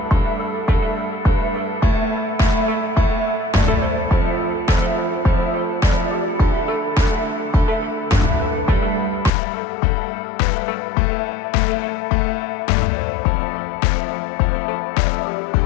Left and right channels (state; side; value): drops out; right; at 9.3 s